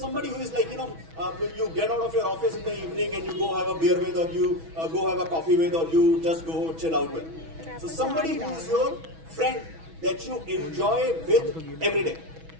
who is like, you get out of your office in the evening and you go have a beer with, or you go have a coffee with, or you just go chill out with. So somebody who is your friend that you enjoy with every day.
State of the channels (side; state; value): left; late; 6.2 ms